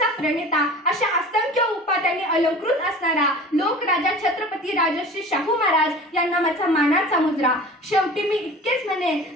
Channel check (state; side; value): normal; both; correlation 0.39